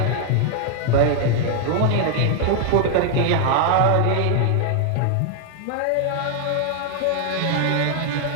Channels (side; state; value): both; different; correlation 0.00